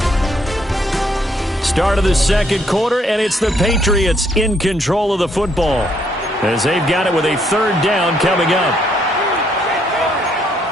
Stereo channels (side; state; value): both; normal; correlation 0.70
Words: Start of the second quarter, and it's the Patriots in control of the football as they've got it with a 3rd down coming up.